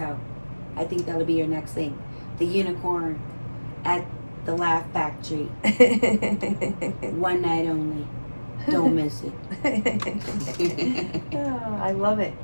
I think that'll be your next thing. The unicorn at the Laugh Factory. One night only. Don't miss it. Oh, I love it.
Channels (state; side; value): inverted; both; correlation -1.00